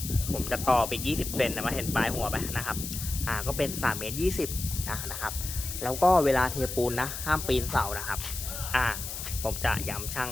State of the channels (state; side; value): noise; left; hiss, 7 dB below the sound